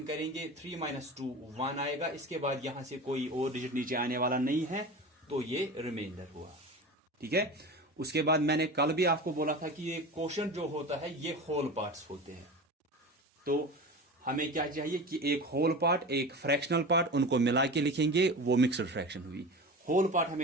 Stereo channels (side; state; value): both; normal; correlation 0.31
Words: करेंगे, 3 - 2 1 आएगा। इसके बाद यहां से कोई और डिजिट नीचे आने वाला नहीं है, तो ये रिमाइंडर हुआ, ठीक है। उसके बाद मैंने कल भी आपको बोला था कि ये क्वोशंट जो होता है ये होल पार्ट्स होते हैं। तो हमें क्या चाहिए कि एक होल पार्ट, एक फ्रैक्शनल पार्ट, उनको मिला के लिखेंगे, वो मिक्सड फ्रैक्शन हुई। होल पार्ट